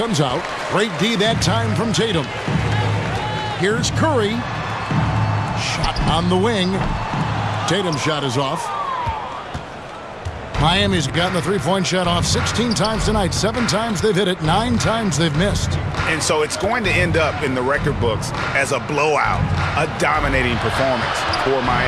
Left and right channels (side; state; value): both; identical; correlation 1.00